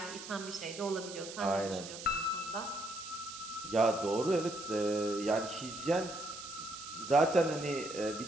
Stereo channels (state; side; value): noise; right; hiss, 11 dB below the sound